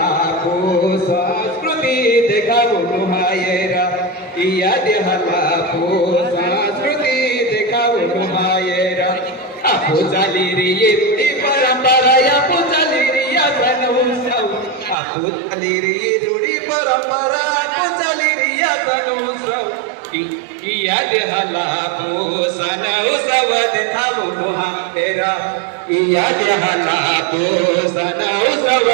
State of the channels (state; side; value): drops out; left; at 15.0 s